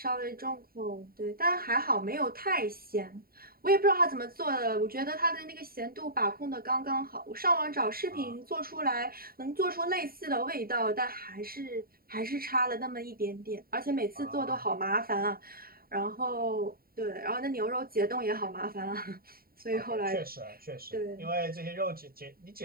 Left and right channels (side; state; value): left; late; 0.43 ms